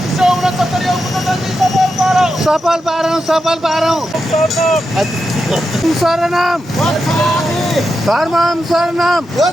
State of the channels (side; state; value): both; normal; correlation 0.88